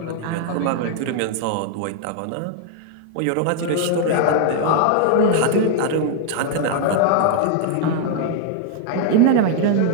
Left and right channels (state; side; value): different; both; correlation 0.00